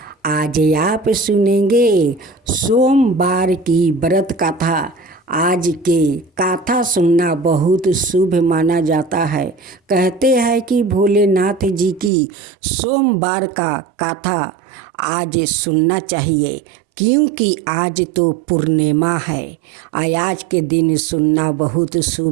आज आप सुनेंगे सोमवार की व्रत कथा। आज के कथा सुनना बहुत शुभ माना जाता है। कहते हैं कि भोलेनाथ जी की सोमवार का कथा आज सुनना चाहिए, क्योंकि आज तो पूर्णिमा है। आज के दिन सुनना बहुत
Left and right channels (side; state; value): left; drops out; at 12.1 s